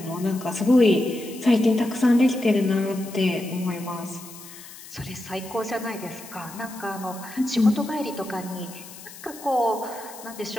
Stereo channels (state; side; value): noise; left; hiss, 16 dB below the sound